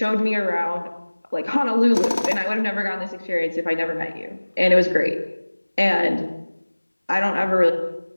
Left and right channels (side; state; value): both; inverted; correlation -1.00